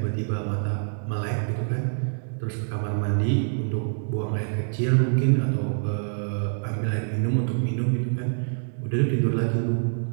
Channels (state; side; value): silent; left; digital silence